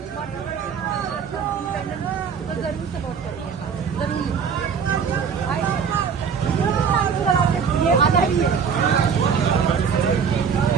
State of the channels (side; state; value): left; quieter; 6.6 dB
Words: तो जरूर सपोर्ट करिए, जरूर। ये आना ही है।